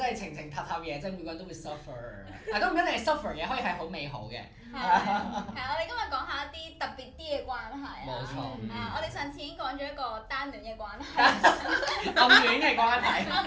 係情情塔塔嘢，即係每個人都會 suffer。但都唔一定係 suffer 嘅，可以係好美好嘅。係我哋今日講下一啲特別啲嘅關係啊。冇錯。我哋上次已經講咗一個單戀嘅關係。暗戀嘅關係。暗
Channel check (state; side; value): identical; both; correlation 1.00